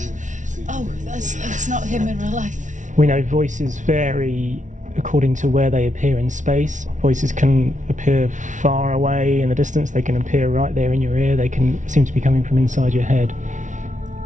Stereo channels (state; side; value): late; left; 0.37 ms